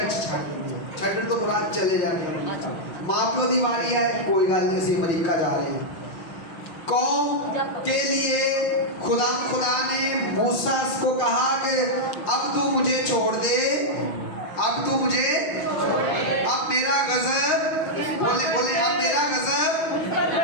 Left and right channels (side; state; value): right; late; 5.8 ms